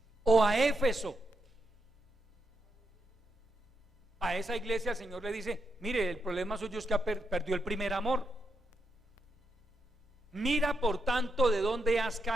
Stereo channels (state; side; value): normal; both; correlation 0.82